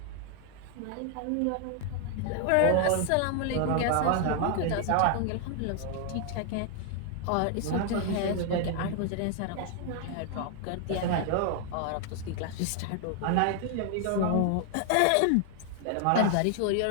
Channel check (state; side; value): different; both; correlation 0.00